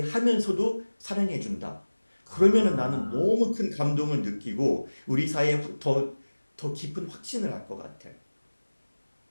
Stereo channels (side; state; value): both; inverted; correlation -1.00